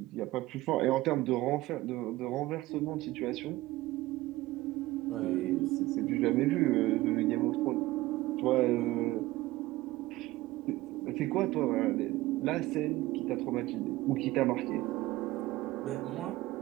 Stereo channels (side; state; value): left; quieter; 17.9 dB